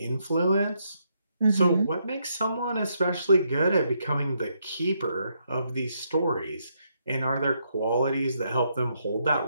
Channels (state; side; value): inverted; both; correlation -0.77